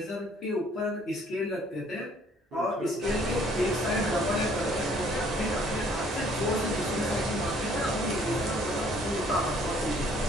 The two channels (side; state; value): both; normal; correlation 0.60